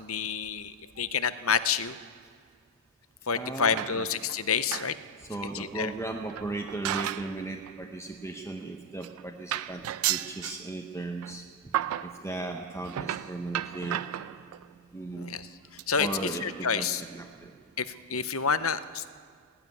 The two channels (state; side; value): normal; both; correlation 0.03